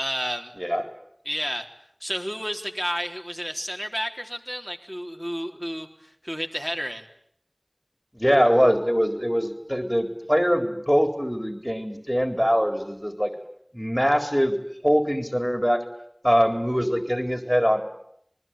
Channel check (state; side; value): identical; both; correlation 1.00